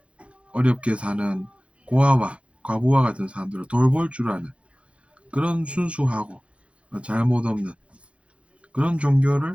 어렵게 사는 고아와 과부와 같은 사람들을 돌볼 줄 아는 그런 순수하고 잘못 없는 그런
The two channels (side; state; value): left; late; 0.061 ms